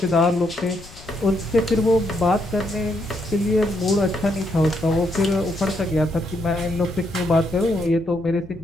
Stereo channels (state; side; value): noise; left; rumble, 19 dB below the sound